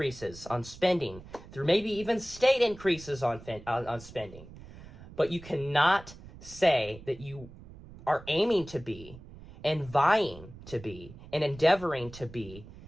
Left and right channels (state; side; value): noise; right; rumble, 17 dB below the sound